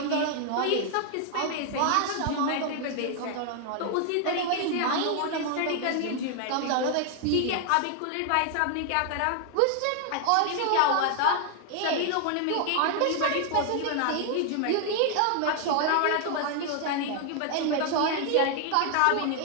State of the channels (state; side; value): different; both; correlation 0.00